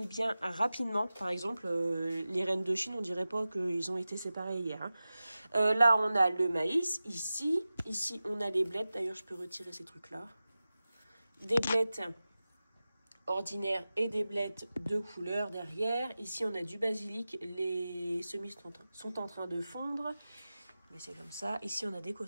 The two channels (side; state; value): both; inverted; correlation -0.95